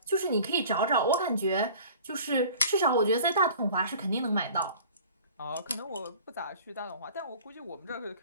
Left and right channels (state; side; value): inverted; both; correlation -0.45